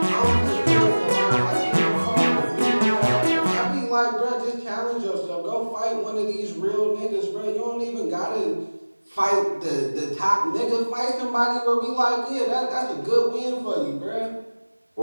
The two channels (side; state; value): both; inverted; correlation -1.00